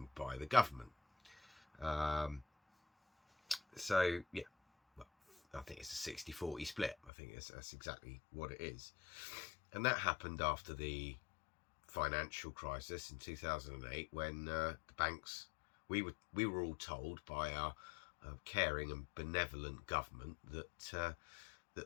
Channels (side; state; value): right; drops out; at 7.1 s